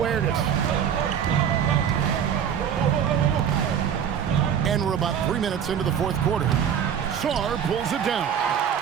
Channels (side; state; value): left; quieter; 8.4 dB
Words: And we're about 3 minutes into the fourth quarter. Sarr pulls it down.